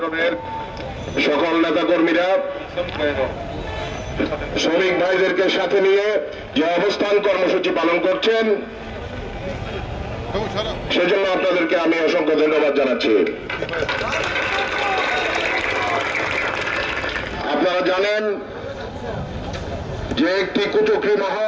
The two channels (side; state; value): both; identical; correlation 1.00